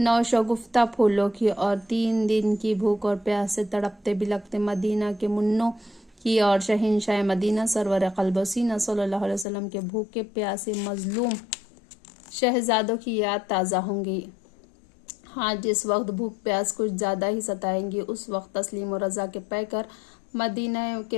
پھولوں کی اور 3 دن کی بھوک اور پیاس سے تڑپتے بلکتے مدینہ کے منوں کی اور شہنشاہ مدینہ سرور قلب و سینہ صلی اللہ علیہ وسلم کے بھوکے پیاسے مظلوم شہزادوں کی یاد تازہ ہوں گی۔ ہاں، جس وقت بھوک پیاس کچھ زیادہ ہی ستائیں گی، اس وقت تسلیم و رضا کے پیکر مدینہ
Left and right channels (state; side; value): drops out; right; at 9.5 s